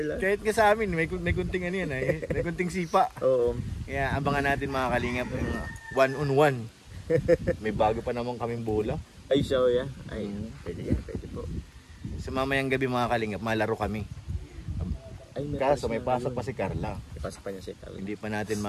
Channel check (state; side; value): identical; both; correlation 1.00